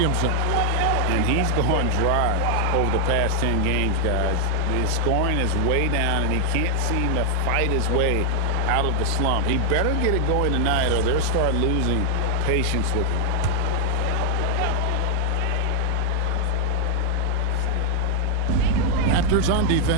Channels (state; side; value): different; both; correlation 0.00